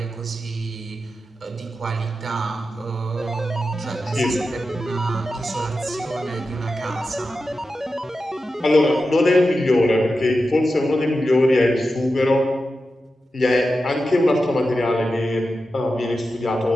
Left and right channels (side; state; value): both; normal; correlation 0.91